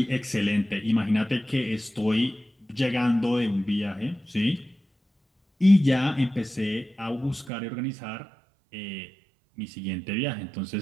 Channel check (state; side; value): drops out; left; at 7.5 s